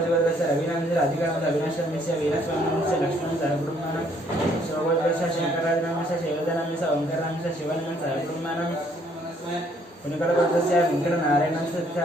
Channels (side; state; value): both; normal; correlation 0.65